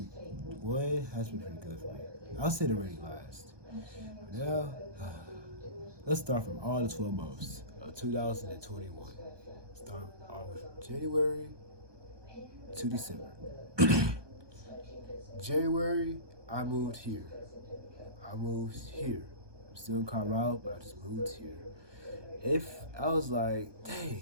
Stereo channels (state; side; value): late; left; 1.2 ms